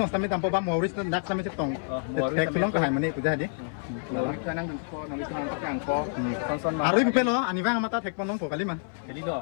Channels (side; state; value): right; silent; 59 dB below the other